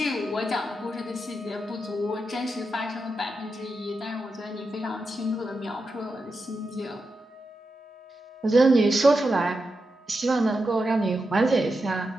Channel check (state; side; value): normal; both; correlation 0.88